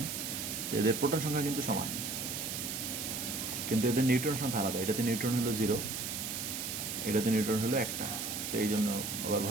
তো এদের প্রোটন সংখ্যা কিন্তু সমান, কিন্তু এদের নিউট্রন সংখ্যা আলাদা। এটাতে নিউট্রন হলো 0, এটাতে নিউট্রন হলো 1টা। তো এই জন্য আবার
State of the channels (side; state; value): right; noise; hiss, 4 dB below the sound